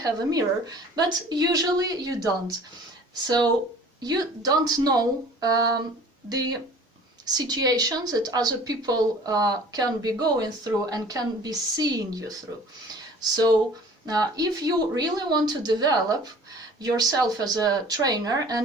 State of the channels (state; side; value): normal; both; correlation 0.47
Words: a mirror, but usually you don't. So you don't know the situations that other people can be going through and can be seeing you through. So if you really want to develop yourself as a trainer,